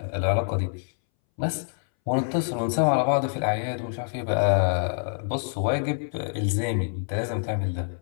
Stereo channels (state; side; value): silent; right; 61 dB below the other